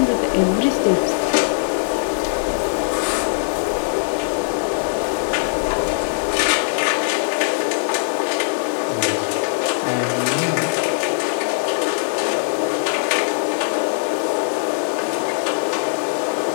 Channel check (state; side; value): silent; right; digital silence